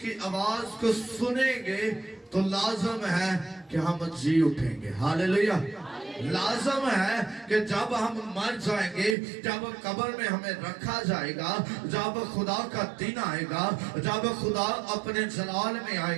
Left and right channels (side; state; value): left; drops out; at 9.2 s